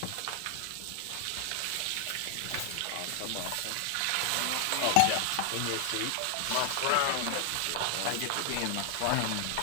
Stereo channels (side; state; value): both; different; correlation 0.00